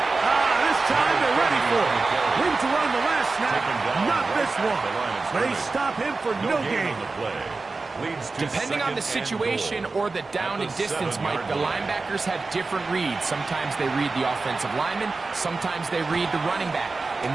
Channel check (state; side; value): quieter; left; 3.8 dB